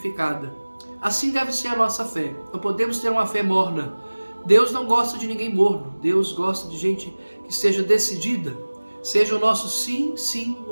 Assim deve ser a nossa fé. Não podemos ter uma fé morna. Deus não gosta de ninguém morno. Deus gosta de gente que seja decidida. Seja o nosso sim, sim,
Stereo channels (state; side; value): inverted; both; correlation -1.00